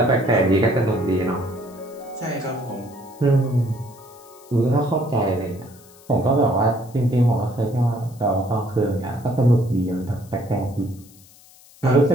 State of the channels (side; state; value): left; noise; hiss, 25 dB below the sound